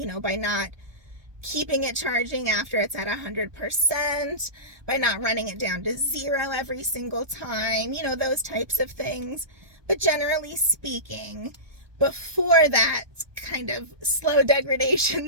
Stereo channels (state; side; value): late; left; 1.2 ms